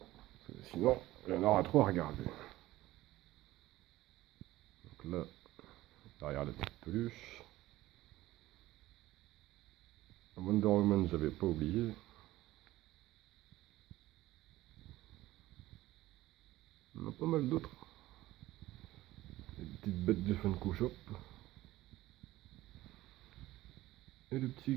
Sinon, il y en aura trop à regarder. Donc là, derrière la petite peluche. Wonder Woman, j'avais pas oublié. On a pas mal d'autres. Les petites bêtes de Funko Shop. Et le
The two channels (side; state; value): left; quieter; 16.6 dB